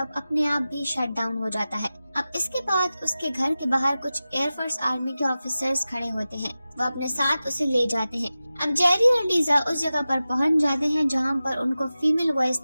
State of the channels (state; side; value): inverted; both; correlation -0.95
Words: अपने आप भी शट डाउन हो जाता है। अब इसके बाद उसके घर के बाहर कुछ एयरफोर्स आर्मी के ऑफिसर्स खड़े होते हैं। वो अपने साथ उसे ले जाते हैं। अब जेरी और लीजा उस जगह पर पहुंच जाते हैं जहां पर उनको फीमेल वॉइस